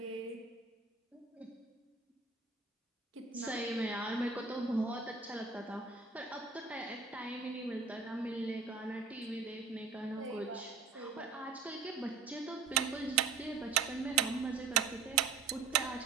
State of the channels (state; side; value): quieter; left; 5.0 dB